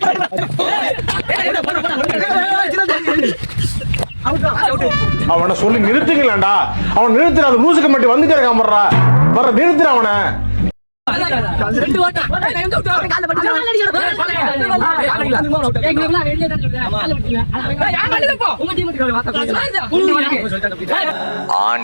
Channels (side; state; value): both; inverted; correlation -1.00